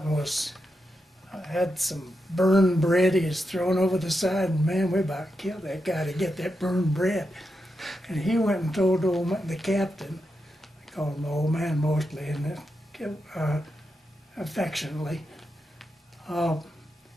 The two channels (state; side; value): normal; both; correlation 0.86